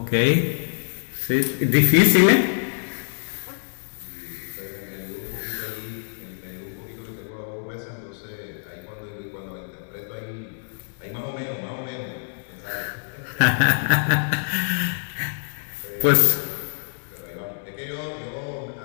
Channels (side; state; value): right; silent; digital silence